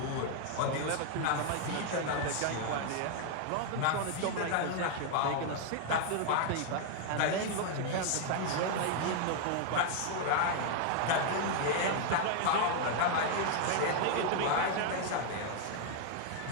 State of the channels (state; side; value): different; both; correlation 0.00